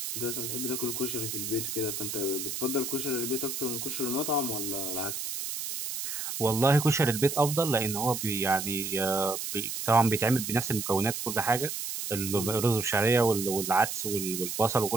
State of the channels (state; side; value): noise; right; hiss, 4 dB below the sound